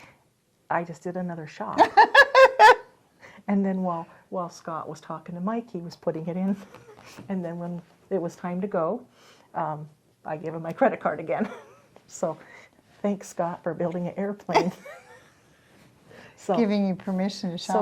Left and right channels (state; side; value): identical; both; correlation 1.00